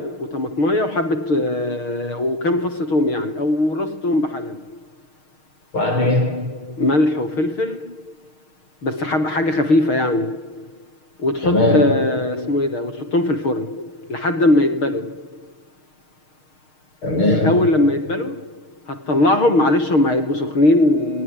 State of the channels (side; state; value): right; late; 6.5 ms